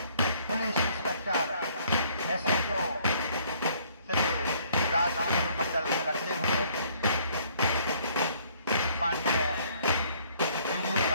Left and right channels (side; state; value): both; inverted; correlation -0.62